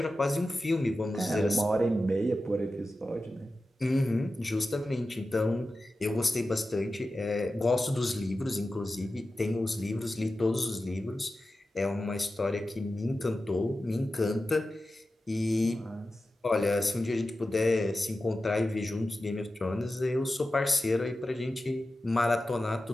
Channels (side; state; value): both; normal; correlation 0.93